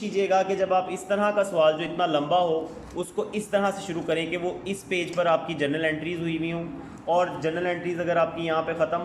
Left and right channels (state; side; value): identical; both; correlation 1.00